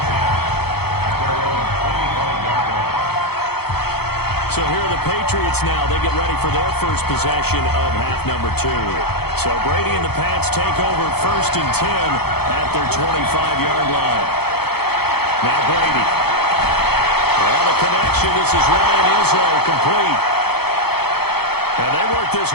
So here are the Patriots now. They get ready for their first possession of half number 2. So Brady and the Pats take over 1st and 10 at their 25-yard line. Now Brady. Well, the connection. This is Ryan Izzo, complete. And they work this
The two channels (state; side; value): late; right; 0.96 ms